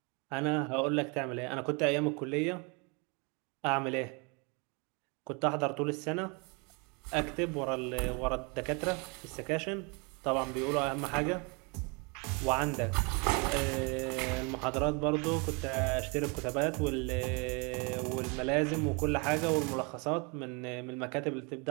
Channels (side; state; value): left; quieter; 31.9 dB